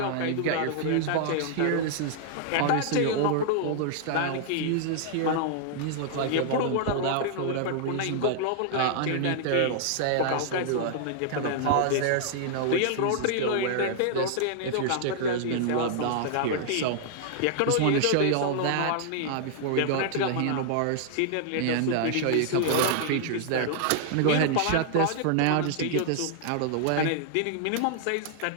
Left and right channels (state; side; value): different; both; correlation -0.01